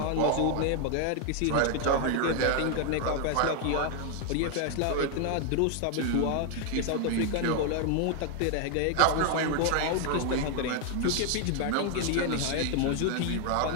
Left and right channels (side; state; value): both; different; correlation 0.00